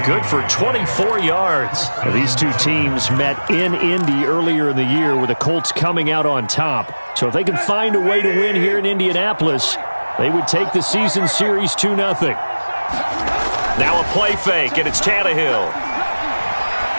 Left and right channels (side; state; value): both; inverted; correlation -1.00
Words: Good for 24 yards. Well, these two teams met in Indy earlier in the year with the Colts coming out on top. So if they can find a way to win here in Indianapolis, they would take the season series 2-0. Now a play fake, and it's Tannehill.